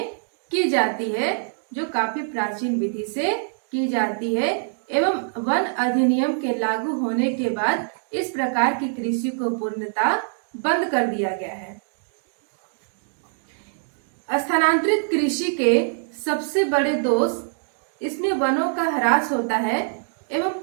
की जाती है, जो काफी प्राचीन विधि से की जाती है एवं वन अधिनियम के लागू होने के बाद इस प्रकार की कृषि को पूर्णतः बंद कर दिया गया है। स्थानांतरित कृषि के सबसे बड़े दोष इसमें वनों का ह्रास होता है एवं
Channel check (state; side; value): silent; left; digital silence